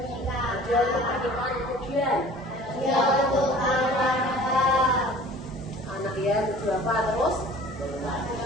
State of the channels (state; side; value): normal; both; correlation 0.47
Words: Hadiah untuk pernikahan, kemudian Hadiah untuk anak ya, untuk apa? Terus